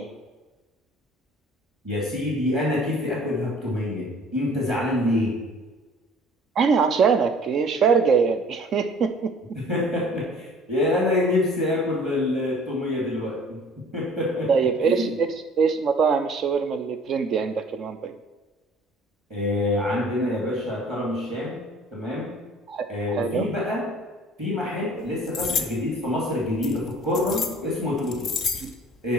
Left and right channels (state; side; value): normal; both; correlation 0.51